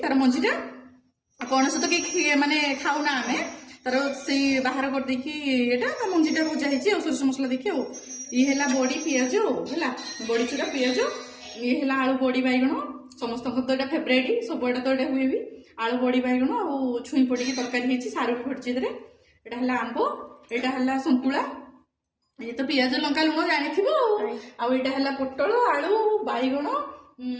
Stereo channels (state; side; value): identical; both; correlation 1.00